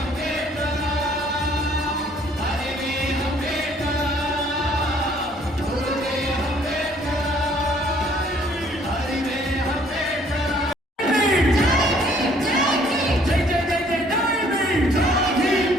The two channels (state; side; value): normal; both; correlation 0.61